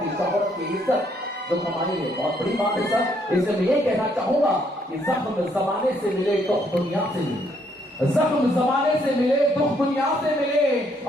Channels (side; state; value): both; normal; correlation 0.70